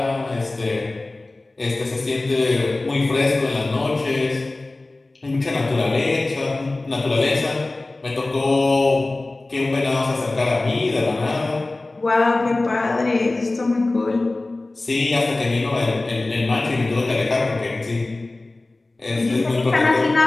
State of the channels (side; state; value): right; quieter; 3.0 dB